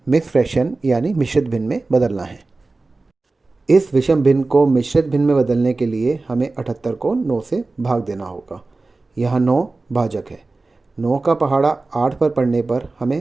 मिक्स फ्रैक्शन यानी मिश्रित भिन्न में बदलना है। इस विषम भिन्न को मिश्रित भिन्न में बदलने के लिए हमें 78 को 9 से भाग देना होगा। यहाँ 9 भाजक है। 9 का पहाड़ा 8 पर पड़ने पर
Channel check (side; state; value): left; quieter; 3.4 dB